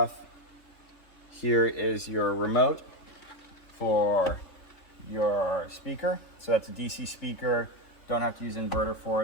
Here is your remote for your speaker. So that's a DC speaker. Don't have to use an inverter for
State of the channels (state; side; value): late; right; 3.4 ms